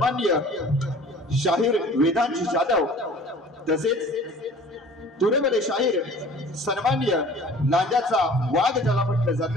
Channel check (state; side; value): normal; both; correlation 0.47